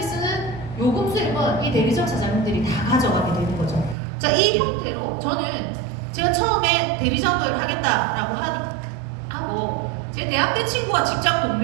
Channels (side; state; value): left; drops out; at 4.0 s